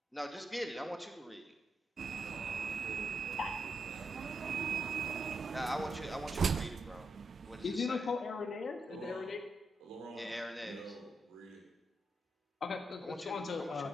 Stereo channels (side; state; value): both; normal; correlation 0.82